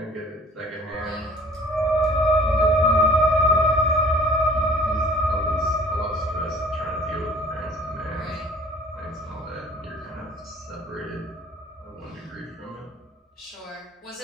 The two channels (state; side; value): normal; both; correlation 0.51